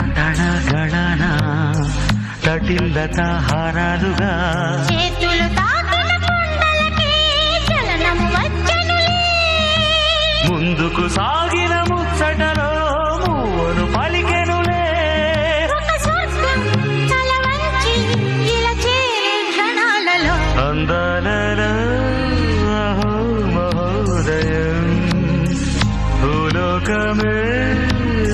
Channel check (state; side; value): identical; both; correlation 1.00